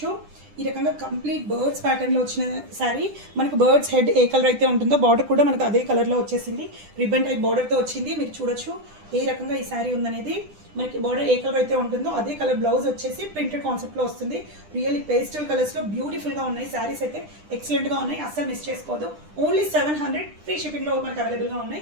ఈ రకంగా కంప్లీట్ బర్డ్స్ ప్యాటర్న్లో వచ్చిన శారీ. మనకు బర్డ్స్ హెడ్ ఏ కలర్ అయితే ఉంటుందో బార్డర్ కూడా మనకు అదే కలర్లో వచ్చేసింది. రిబ్బన్ టైప్ బార్డర్తో వచ్చింది. మీరు చూడొచ్చు ఏ రకంగా ఈ శారీ ఉందనేది. మనకి బార్డర్ ఏ కలర్ అయితే ఉంటుందో అదే కలర్ బ్లౌజ్ వచ్చేసి ప్రింటెడ్ కాన్సెప్ట్లో వస్తుంది. రియల్లీ పేస్టల్ కలర్స్లో బ్యూటిఫుల్గా ఉన్నాయి శారీస్ అయితే, ఎక్సలెంట్గా ఉన్నాయి. అస్సలు మిస్ చేసుకోవద్దు. ఓన్లీ 700 ఫ్రీ షిప్పింగ్లో మనకు అవైలబుల్గా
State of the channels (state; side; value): late; left; 10 ms